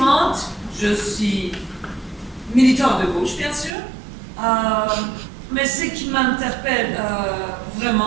de gauche bien sûr, mais ce qui m'interpelle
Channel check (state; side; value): drops out; left; at 3.7 s